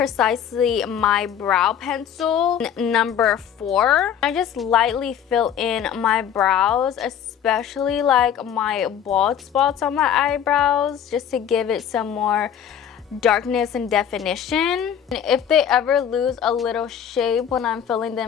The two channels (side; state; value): right; quieter; 9.0 dB